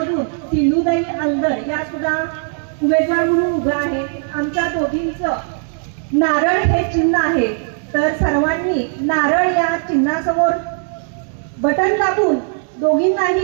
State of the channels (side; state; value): left; silent; 56 dB below the other